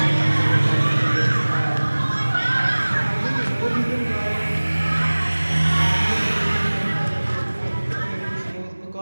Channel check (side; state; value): both; inverted; correlation -1.00